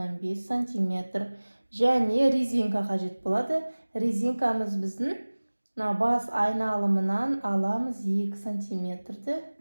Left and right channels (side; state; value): both; inverted; correlation -1.00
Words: см. Және резинка қажет болады. Резинкамыз біздің бас айналымынан аламыз 2 см-ді